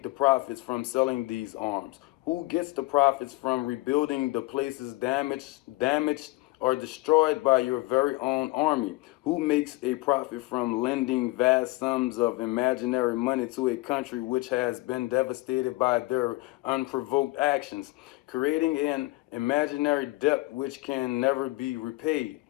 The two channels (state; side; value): quieter; right; 21.3 dB